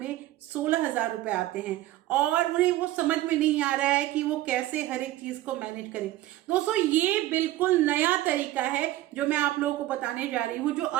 16,000 रुपए आते हैं और उन्हें वो समझ में नहीं आ रहा है कि वो कैसे हर एक चीज को मैनेज करें। दोस्तों, ये बिल्कुल नया तरीका है जो मैं आप लोगों को बताने जा रही हूं, जो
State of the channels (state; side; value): quieter; left; 15.6 dB